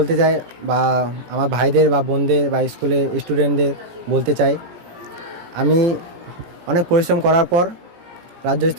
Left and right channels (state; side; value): late; left; 17 ms